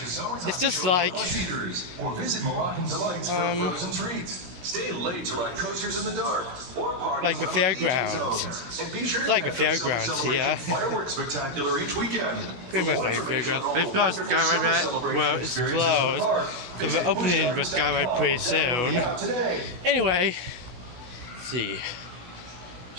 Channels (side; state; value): left; late; 16 ms